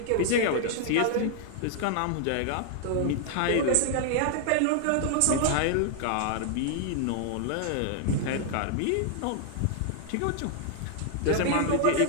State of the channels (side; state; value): both; different; correlation 0.00